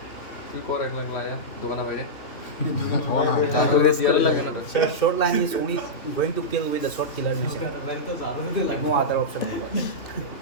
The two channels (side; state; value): right; late; 3.0 ms